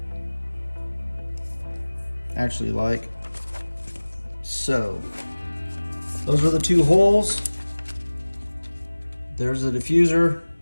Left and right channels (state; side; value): inverted; both; correlation -1.00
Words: Actually, like so. Those are the two holes. There's the diffuser.